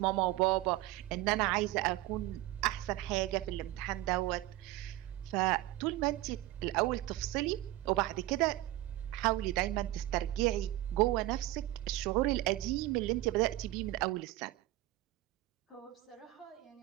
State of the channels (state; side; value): quieter; left; 16.4 dB